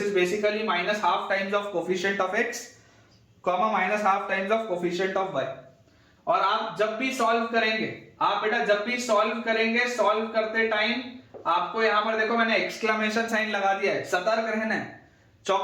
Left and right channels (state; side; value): identical; both; correlation 1.00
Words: is basically minus half times of coefficient of x comma minus half times of coefficient of y। और आप जब भी सॉल्व करेंगे, आप बेटा जब भी सॉल्व करेंगे, सॉल्व करते टाइम आपको यहां पर देखो मैंने एक्सक्लेमेशन साइन लगा दिया है, सतर्क रहना है,